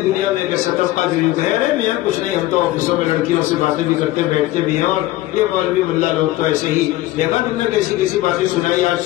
دنیا میں ایک سطح کا جو کہہ رہے نہیں ہے کچھ نہیں، ہم تو آفسوں میں لڑکیوں سے باتیں بھی کرتے بیٹھتے بھی ہیں، اور یہ مولوی ملا لوگ تو ایسے ہی دیکھا تم نے کیسی باتیں سنائی آج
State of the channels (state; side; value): quieter; right; 16.6 dB